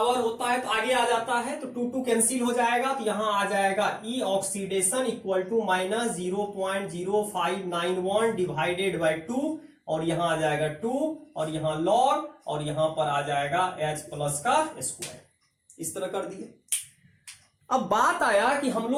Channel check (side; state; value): both; identical; correlation 1.00